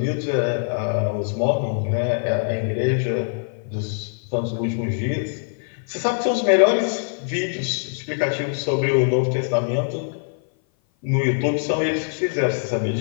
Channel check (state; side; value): silent; right; 56 dB below the other